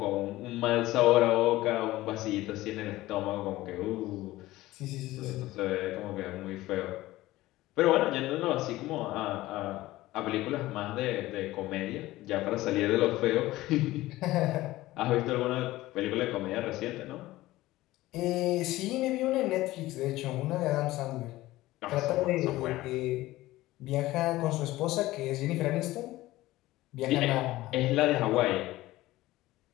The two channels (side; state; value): right; quieter; 17.3 dB